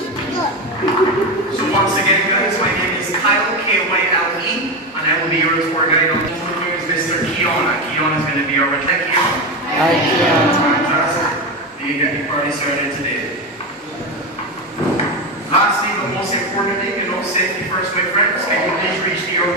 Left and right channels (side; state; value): both; normal; correlation 0.16